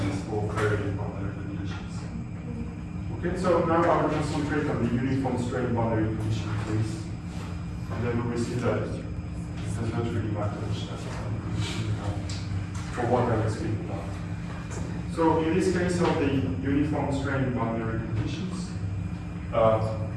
Okay, so now I will concentrate on the uniform strain boundary condition case, and then we will see that it does not really matter which type of boundary condition you have for what I will speak about. So in this case of the uniform strain boundary conditions,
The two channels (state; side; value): identical; both; correlation 1.00